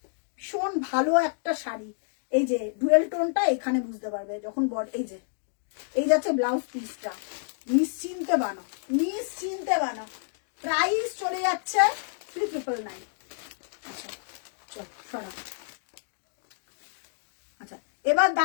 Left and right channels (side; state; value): right; silent; digital silence